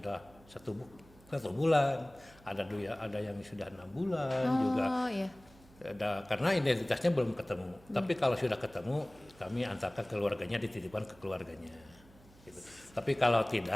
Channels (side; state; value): right; noise; hum, 25 dB below the sound